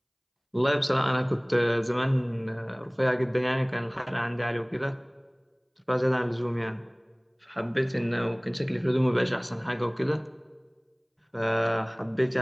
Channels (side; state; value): both; identical; correlation 1.00